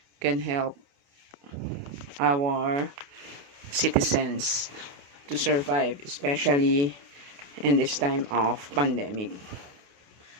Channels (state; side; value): late; left; 28 ms